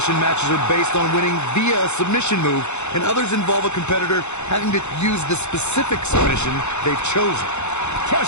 matches are based on winning via a submission move, and others involve a competitor having to use the specific submission they've chosen.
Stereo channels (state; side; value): late; right; 0.82 ms